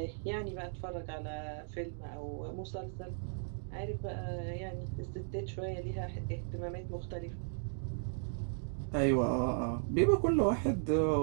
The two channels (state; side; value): silent; left; digital silence